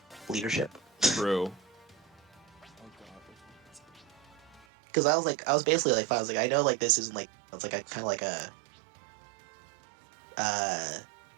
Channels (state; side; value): drops out; left; at 4.7 s